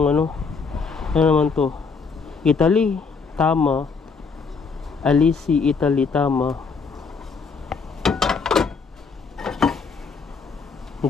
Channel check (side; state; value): right; quieter; 5.1 dB